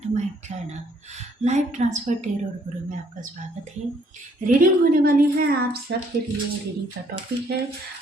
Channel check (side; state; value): both; normal; correlation 0.66